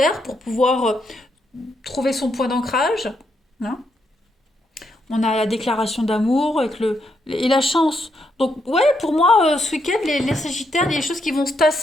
pour pouvoir trouver son point d'ancrage. Hein. On a la déclaration d'amour et la chance. Donc, ouais, pour moi, ce week-end, les Sagittaires, il y a des choses qui vont se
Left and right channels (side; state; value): both; normal; correlation 0.79